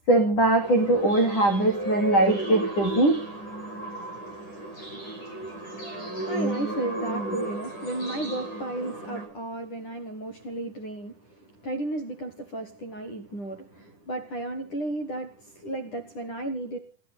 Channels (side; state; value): right; late; 10 ms